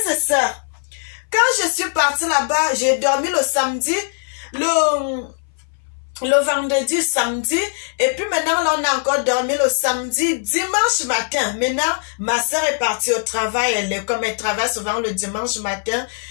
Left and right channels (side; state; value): right; silent; 61 dB below the other